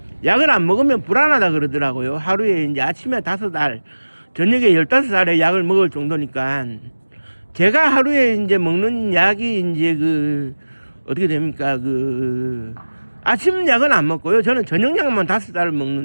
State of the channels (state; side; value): inverted; both; correlation -1.00